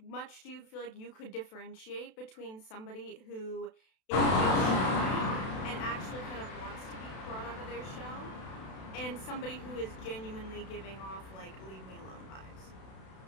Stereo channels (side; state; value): right; late; 32 ms